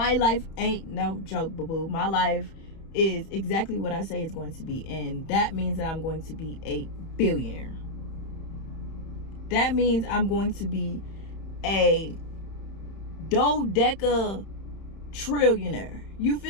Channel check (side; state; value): right; late; 31 ms